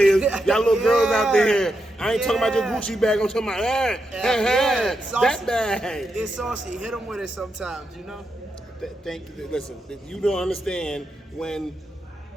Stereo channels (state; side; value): normal; both; correlation 0.85